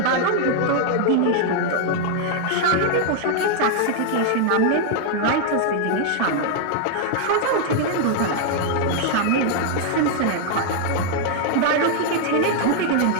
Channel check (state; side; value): different; both; correlation 0.00